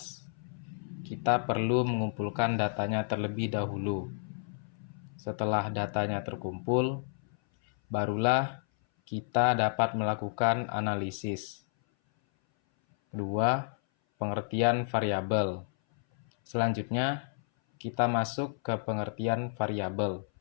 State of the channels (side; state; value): right; silent; 57 dB below the other